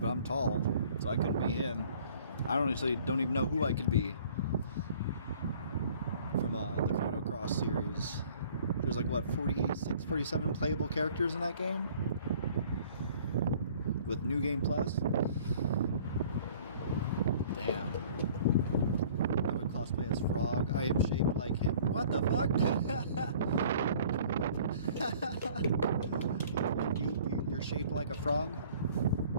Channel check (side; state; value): both; inverted; correlation -0.52